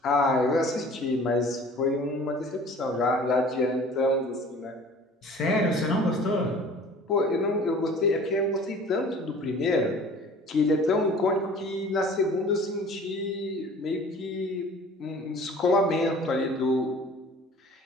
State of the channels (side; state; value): both; normal; correlation 0.46